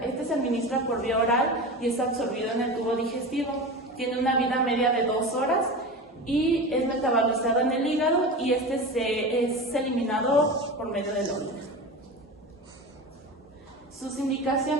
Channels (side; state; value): both; normal; correlation 0.28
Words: se administra por vía oral y es absorbido en el tubo digestivo. Tiene una vida media de 2 horas y es metabolizado en el hígado y es eliminado por medio de la orina. Sus